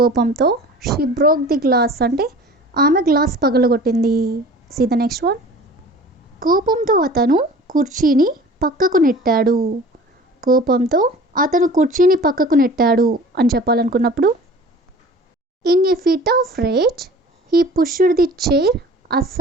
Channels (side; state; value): both; normal; correlation 0.43